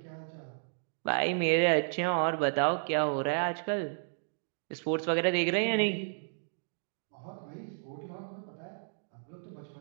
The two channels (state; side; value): silent; left; digital silence